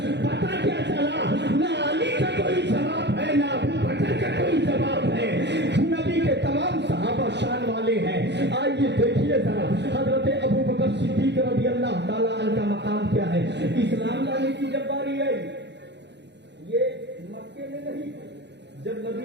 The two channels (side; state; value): left; late; 0.50 ms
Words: پتا کیا چلا, نہ علی کا کوئی جواب ہے نہ ابو بکر کا کوئی جواب ہے. نبی کے تمام صحابہ شان والے ہیں. آئیے دیکھیے ذرا حضرت ابو بکر صدیق رضی اللہ تعالیٰ عنہ کا مقام کیا ہے. اسلام لانے کی جب باری آئی, یہ مکے میں نہیں, جب